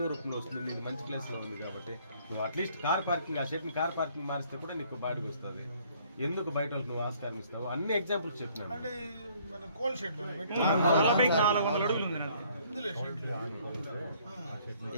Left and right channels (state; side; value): inverted; both; correlation -0.61